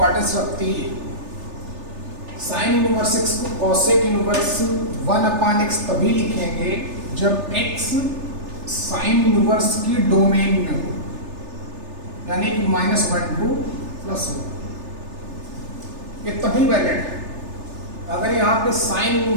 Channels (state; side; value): late; left; 3.4 ms